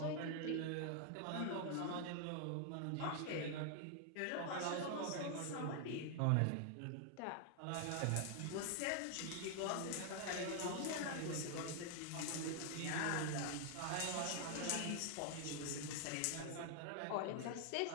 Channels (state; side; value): different; both; correlation 0.00